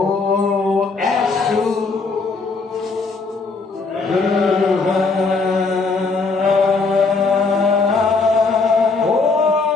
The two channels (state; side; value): quieter; right; 4.1 dB